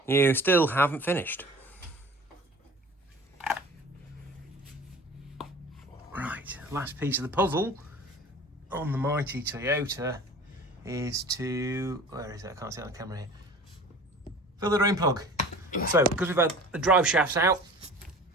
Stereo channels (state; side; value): normal; both; correlation 0.42